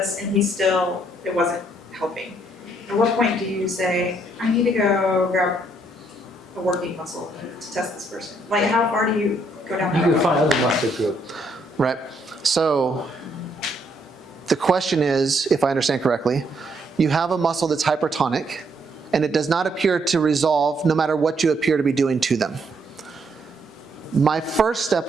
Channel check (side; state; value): both; normal; correlation 0.71